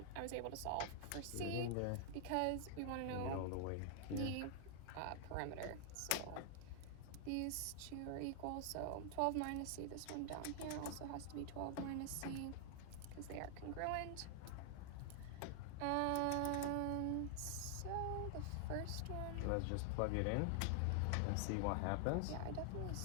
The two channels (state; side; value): different; both; correlation 0.00